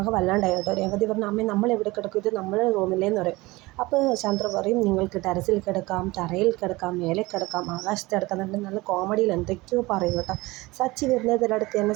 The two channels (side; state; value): left; quieter; 21.3 dB